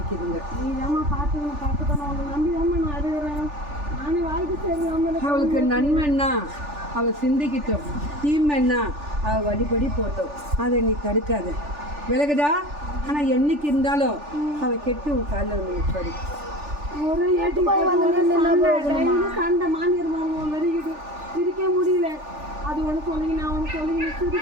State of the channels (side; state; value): left; late; 3.4 ms